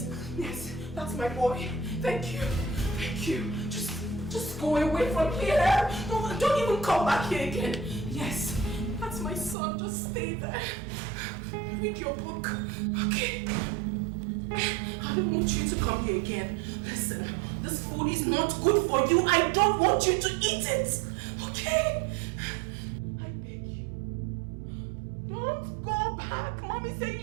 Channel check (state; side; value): drops out; left; at 9.6 s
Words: Yes, that's my boy. Thank you. Thank you. Just go away from here. Don't even come back here again. Yes, that's my son. Just stay there. Read your book. Okay? I don't want you to come here again. Listen, this food is not good for you. I don't want you to eat it. Okay? Don't go back. Mommy said you